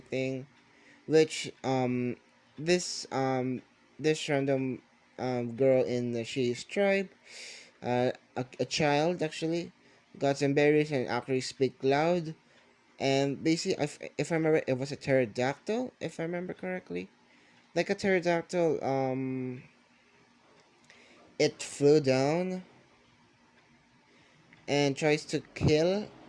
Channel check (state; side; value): identical; both; correlation 1.00